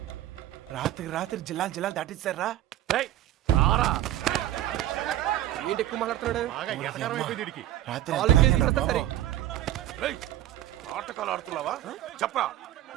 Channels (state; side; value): quieter; left; 13.6 dB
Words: రాత్రి జిల్లాలు దాటిస్తారా? ఏంటి ఎక్కువ మాట్లాడుతున్నాడు? నాటకాలు ఆడుతున్నావా? చెప్పరా,